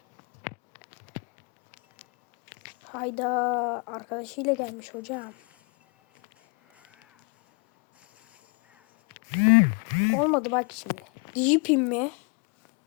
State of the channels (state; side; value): quieter; right; 34.7 dB